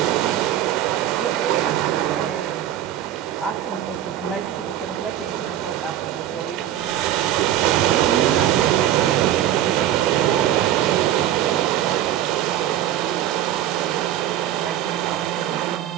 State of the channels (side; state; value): left; quieter; 12.0 dB